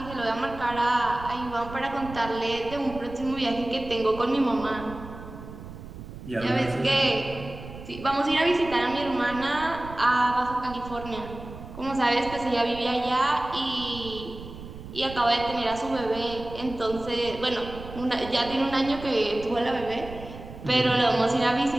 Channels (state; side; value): noise; right; rumble, 13 dB below the sound